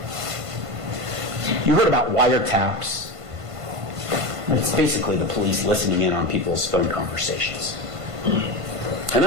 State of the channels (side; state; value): left; late; 1.5 ms